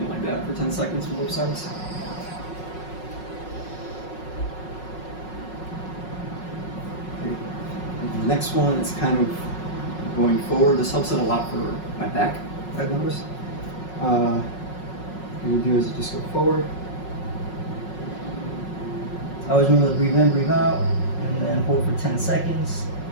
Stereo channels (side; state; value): right; late; 5.5 ms